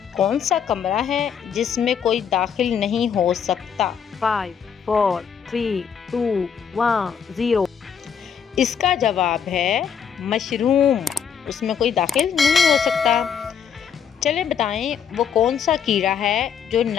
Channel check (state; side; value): quieter; right; 7.5 dB